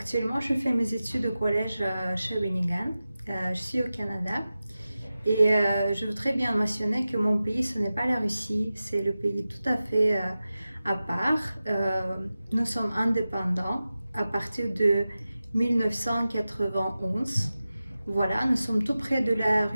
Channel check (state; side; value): inverted; both; correlation -0.94